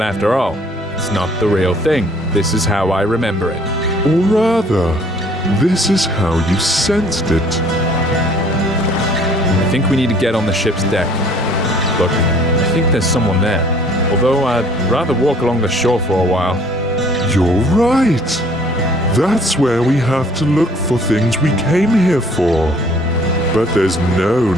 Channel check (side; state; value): both; normal; correlation 0.56